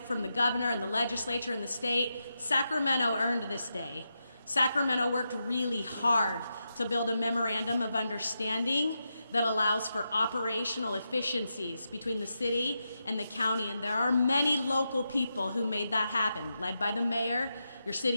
from the governor and the legislature and the state, Sacramento earned this day. Sacramento worked really hard to build a memorandum of understanding that allows for operational efficiencies between the city and the county, and there are many local people who made that happen, led by the mayor, your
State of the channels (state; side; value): inverted; both; correlation -0.87